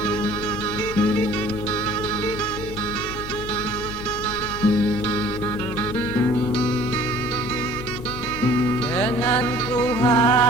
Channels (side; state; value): left; noise; hum, 11 dB below the sound